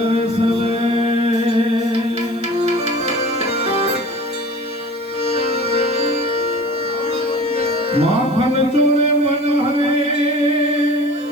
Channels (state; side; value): noise; right; hiss, 27 dB below the sound